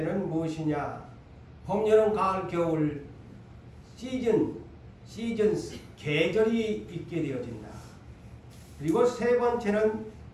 무엇이냐? 봄, 여름, 가을, 겨울 시즌스, 계절이 있게 되어진다. 그리고 세 번째는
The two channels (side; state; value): both; identical; correlation 1.00